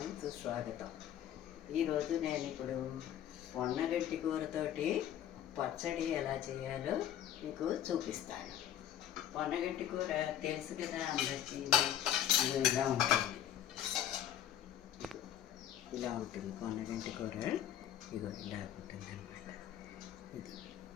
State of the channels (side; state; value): right; quieter; 10.8 dB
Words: సుస్వాగతం. ఈరోజు నేను ఇప్పుడు పొన్నగంటి కూరతోటి పచ్చడి ఎలా చేయాలో మీకు చూపిస్తాను. పొన్నగంటి కూర తెలుసు కదా అందరికీ. ఇలా ఉంటుంది, ఇలా ఉంటుంది పొన్నగంటి కూర. ఇగో ఇలా ఉంటుంది అన్నమాట. ఇది